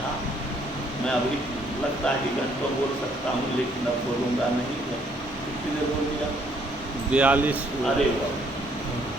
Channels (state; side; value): normal; both; correlation 0.66